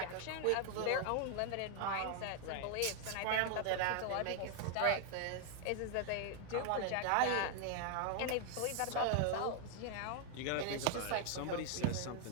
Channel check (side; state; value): both; different; correlation 0.00